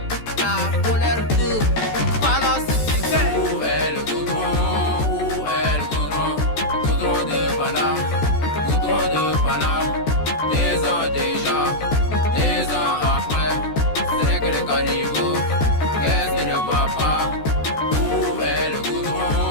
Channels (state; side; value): late; right; 14 ms